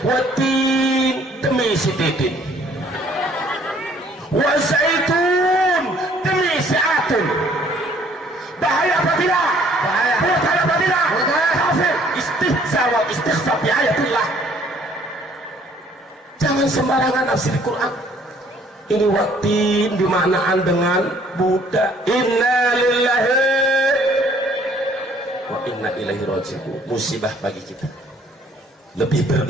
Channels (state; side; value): normal; both; correlation 0.60